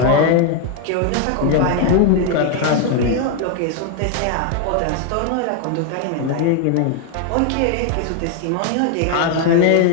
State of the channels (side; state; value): both; different; correlation 0.00